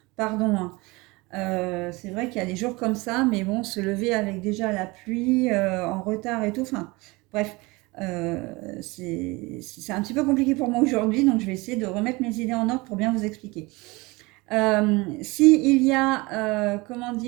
Pardon. Hein. C'est vrai qu'il y a des jours comme ça, mais bon, se lever avec déjà la pluie, en retard et tout, enfin, bref, c'est un petit peu compliqué pour moi aujourd'hui, donc je vais essayer de remettre mes idées en ordre pour bien vous expliquer. Si il y a, comment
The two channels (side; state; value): left; quieter; 24.0 dB